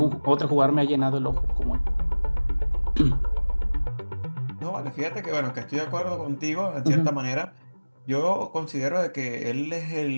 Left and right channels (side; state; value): both; inverted; correlation -1.00